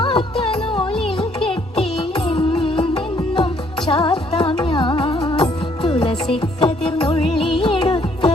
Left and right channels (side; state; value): both; normal; correlation 0.66